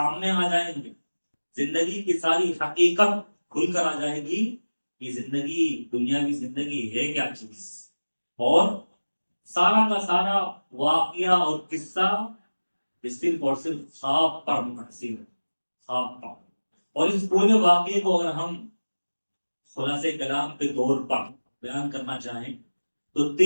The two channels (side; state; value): both; inverted; correlation -1.00